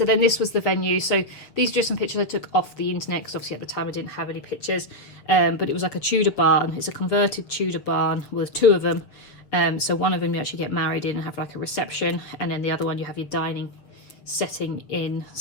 then this was the venue. So these are just some pictures I took off the internet because obviously at the time I didn't have any pictures. But it was like a Tudor barn. It's a converted Tudor barn with two of them. So one of them you actually get married in and have like a reception, and then the other one you have your dining setting in.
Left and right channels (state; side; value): late; right; 6.8 ms